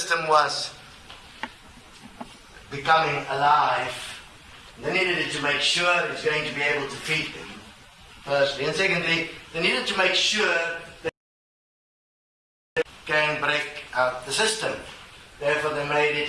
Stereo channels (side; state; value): both; identical; correlation 1.00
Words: was becoming alive. They needed it to make sure it's going to be able to feed them, firstly. And secondly, they needed to make sure that they can break out the system. Therefore, they made